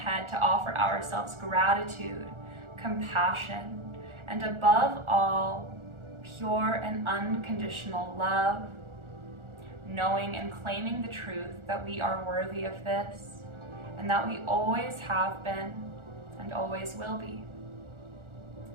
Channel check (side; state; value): left; late; 1.4 ms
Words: to offer ourselves gratitude, compassion, and above all, pure and unconditional love, knowing and claiming the truth that we are worthy of this, and that we always have been and always will be.